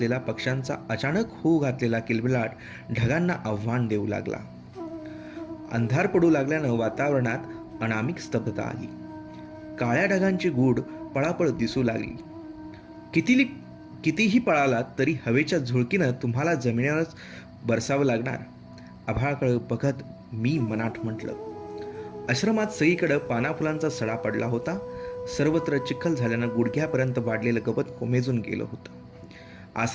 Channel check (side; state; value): both; identical; correlation 1.00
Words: पक्ष्यांचा अचानक होऊ घातलेला किलबिलाट ढगांना आव्हान देऊ लागला. अंधार पडू लागल्यानं वातावरणात अनामिक स्तब्धता आली. काळ्या ढगांची गूढ पळापळ दिसू लागली. कितीही पळालात तरी हवेच्या झुळकीनं तुम्हाला जमिनीवरच बरसावं लागणार. आभाळाकडे बघत मी मनात म्हटलं. आश्रमात सगळीकडं पानाफुलांचा सडा पडला होता. सर्वत्र चिखल झाल्यानं गुडघ्यापर्यंत वाढलेलं गवत कोमेजून गेलं होतं.